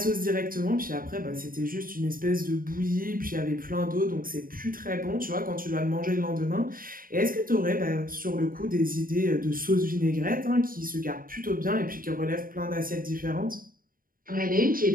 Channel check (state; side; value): late; left; 0.41 ms